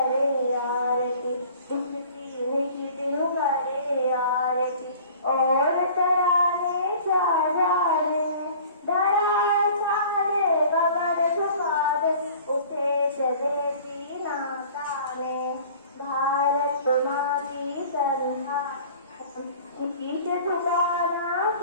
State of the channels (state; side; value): inverted; both; correlation -0.47